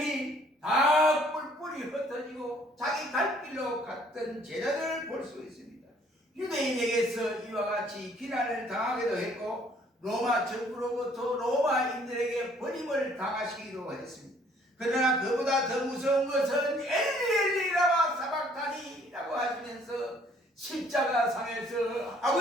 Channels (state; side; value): normal; both; correlation 0.61